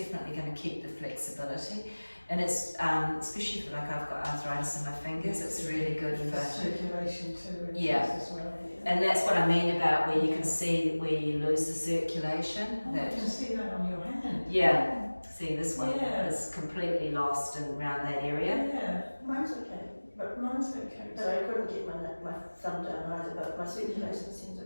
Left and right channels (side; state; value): both; inverted; correlation -1.00